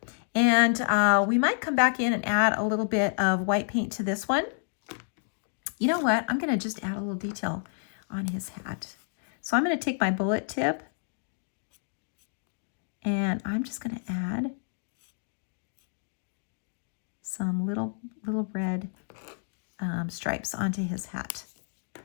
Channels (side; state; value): right; silent; digital silence